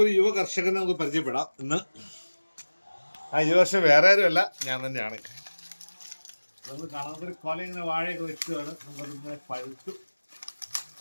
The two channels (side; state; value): both; inverted; correlation -1.00